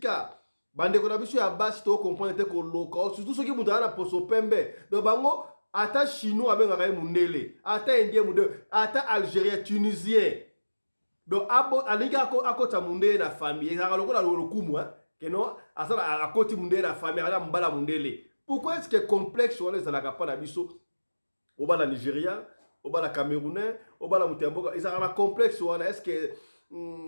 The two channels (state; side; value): inverted; both; correlation -1.00